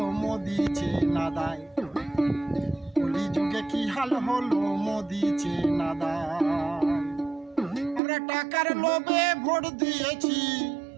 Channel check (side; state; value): left; drops out; at 8.0 s